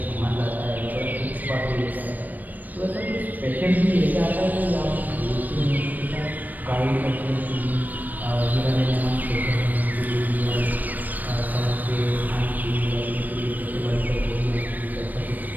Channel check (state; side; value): late; left; 0.085 ms